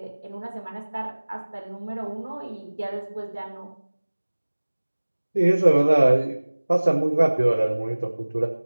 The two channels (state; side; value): inverted; both; correlation -1.00